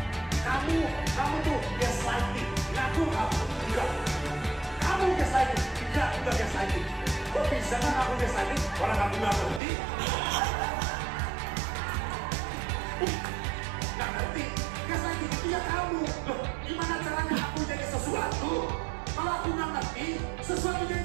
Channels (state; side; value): drops out; left; at 9.6 s